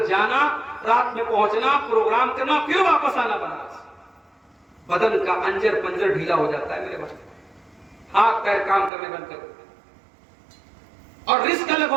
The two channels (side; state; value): left; drops out; at 8.9 s